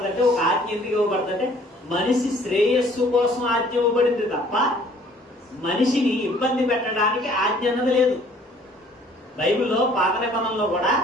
ఒక ఆజ్ఞ ఎందుకు ఇవ్వబడుతుందంటే మనిషి శ్రేయస్సు కోసం ఆజ్ఞ ఇవ్వబడింది తప్ప మనిషిని ఇబ్బంది పెట్టడానికి ఆజ్ఞ అన్నది లేదు. బైబిల్లో పాత నిబంధనలో కూడా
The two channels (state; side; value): normal; both; correlation 0.57